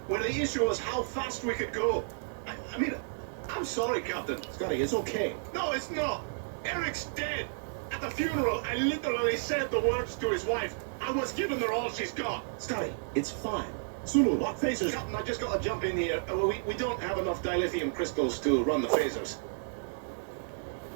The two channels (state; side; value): silent; left; digital silence